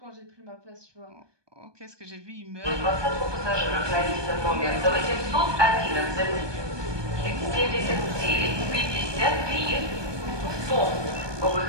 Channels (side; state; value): left; late; 1.2 ms